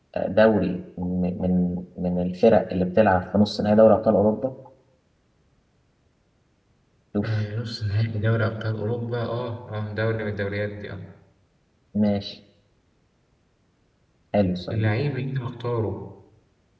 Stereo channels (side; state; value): both; identical; correlation 1.00